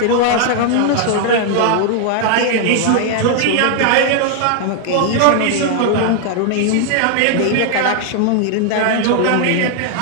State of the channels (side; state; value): both; different; correlation 0.00